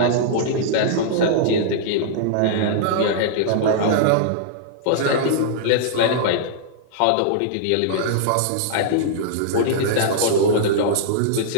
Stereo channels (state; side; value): different; both; correlation -0.02